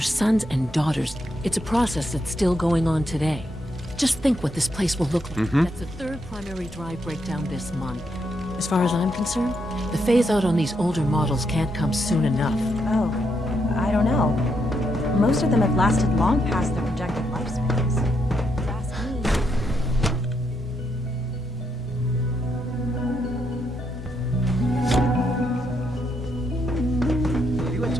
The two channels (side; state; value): both; normal; correlation 0.78